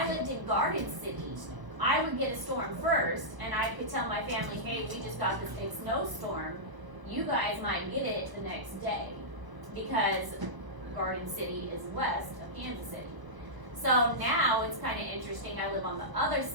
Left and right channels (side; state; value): left; late; 1.1 ms